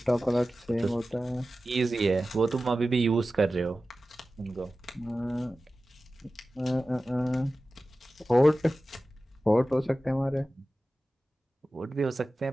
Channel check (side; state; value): both; normal; correlation 0.95